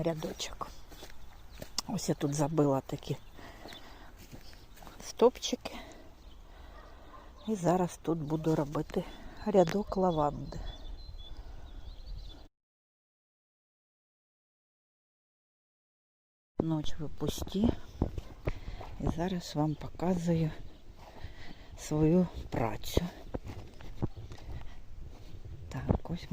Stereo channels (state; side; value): identical; both; correlation 1.00